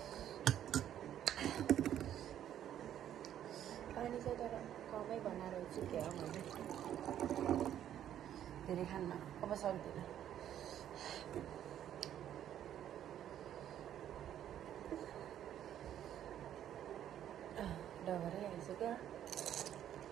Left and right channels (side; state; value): left; quieter; 10.8 dB